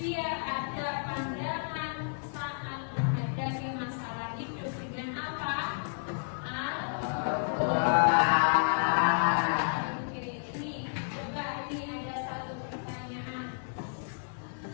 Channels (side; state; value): right; silent; digital silence